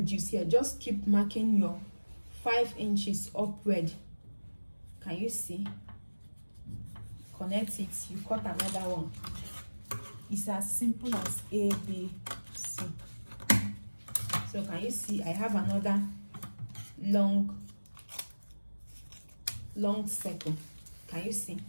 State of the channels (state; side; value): inverted; both; correlation -1.00